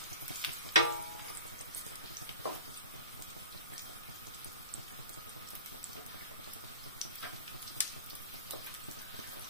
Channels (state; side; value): inverted; both; correlation -0.34